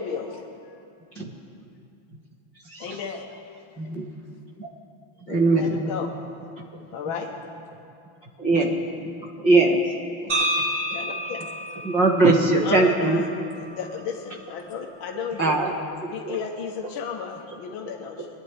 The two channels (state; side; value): late; right; 5.6 ms